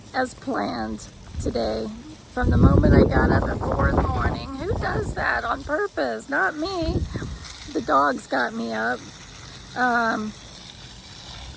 as planned today. From the moment I got up at 4 in the morning, who does that on purpose? Not me. The dogs got me up. I'm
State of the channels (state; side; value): identical; both; correlation 1.00